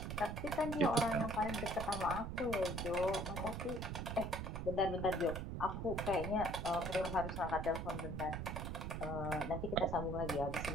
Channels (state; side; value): noise; right; rumble, 4 dB below the sound